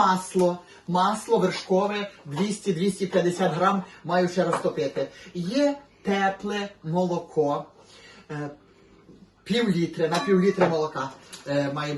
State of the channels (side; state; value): both; identical; correlation 1.00